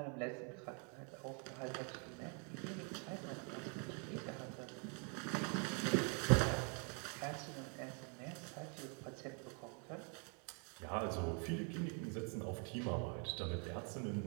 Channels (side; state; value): left; quieter; 37.2 dB